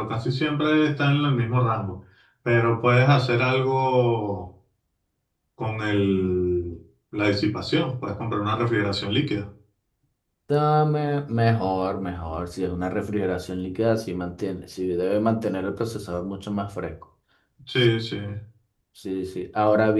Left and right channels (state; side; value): identical; both; correlation 1.00